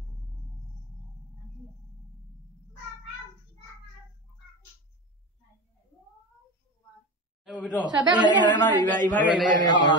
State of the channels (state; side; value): normal; both; correlation 0.24